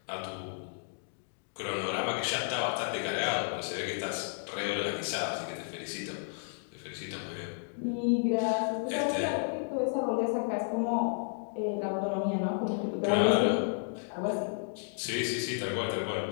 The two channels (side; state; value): right; silent; digital silence